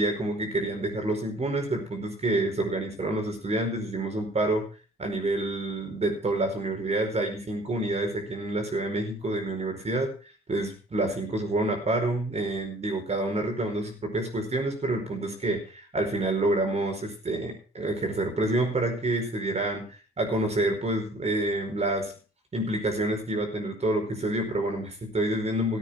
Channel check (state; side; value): normal; both; correlation 0.53